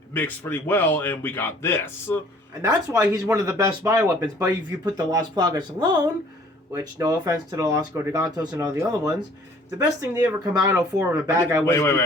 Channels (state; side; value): normal; both; correlation 0.55